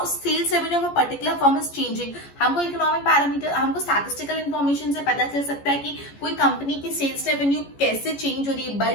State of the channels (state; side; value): late; right; 14 ms